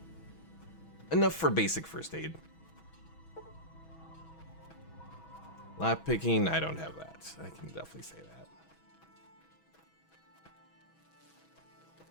Enough for basic first aid. Lock picking, I don't have that. I can definitely say that.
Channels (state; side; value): late; right; 6.1 ms